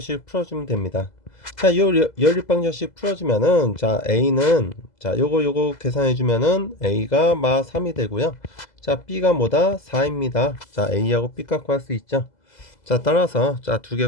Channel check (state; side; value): late; right; 2.0 ms